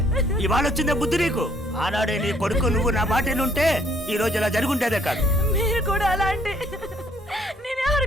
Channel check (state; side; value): normal; both; correlation 0.64